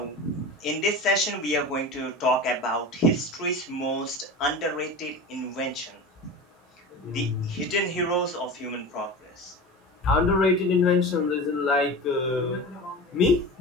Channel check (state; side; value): normal; both; correlation 0.31